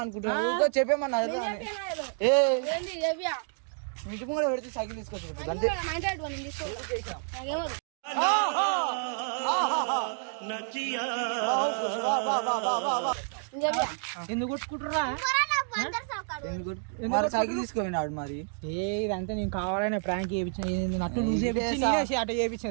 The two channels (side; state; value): left; silent; 58 dB below the other